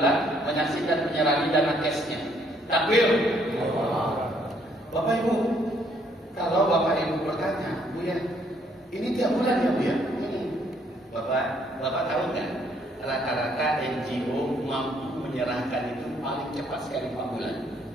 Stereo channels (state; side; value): normal; both; correlation 0.68